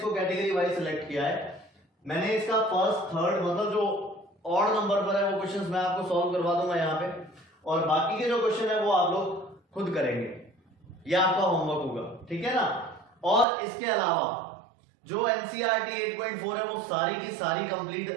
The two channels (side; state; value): left; drops out; at 13.5 s